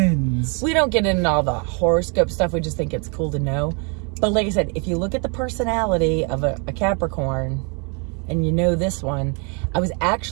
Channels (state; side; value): quieter; left; 35.2 dB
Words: We don't get into all the horoscope stuff. We just think it's cool to know. But like I said, if you look at the personality of a Capricorn, and you know this one, I was